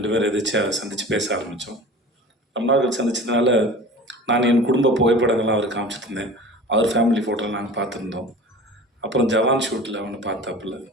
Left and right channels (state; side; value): normal; both; correlation 0.38